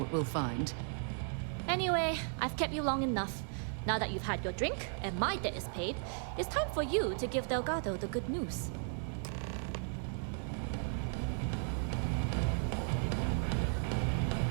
we'll find. Anyway, I've kept you long enough. Now that you've had your drink and my debt is paid, it's time for you to give Delgado the good news.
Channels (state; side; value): silent; left; 54 dB below the other